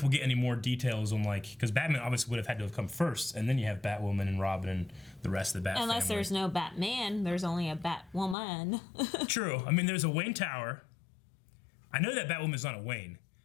we'll get any more details on, like, because Batman obviously would have had to have come first, and then you have Batwoman and Robin and the rest of the Bat Unless family. there's no Batman, there's only a Batwoman. True. I mean, there's a Wayne Tower. I know that Batwoman's not a Wayne,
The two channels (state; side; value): drops out; right; at 8.3 s